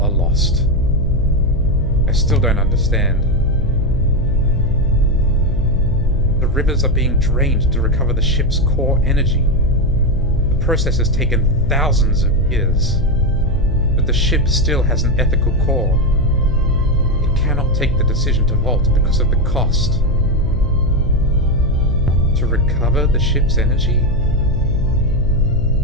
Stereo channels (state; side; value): noise; left; hum, 8 dB below the sound